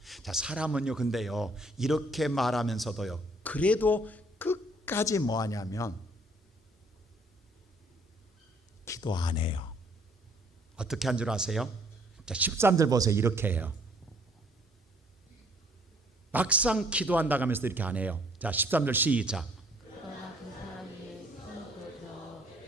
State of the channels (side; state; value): both; normal; correlation 0.61